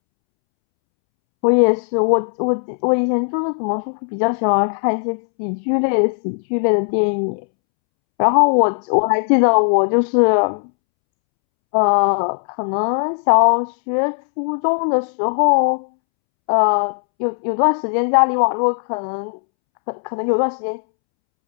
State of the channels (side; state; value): right; silent; 67 dB below the other